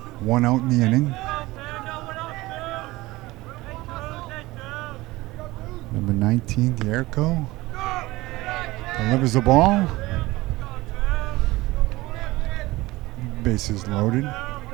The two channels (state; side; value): quieter; left; 19.6 dB